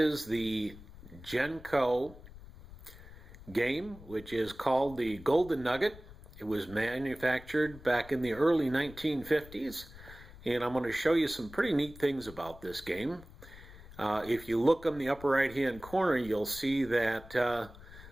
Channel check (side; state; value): left; noise; rumble, 18 dB below the sound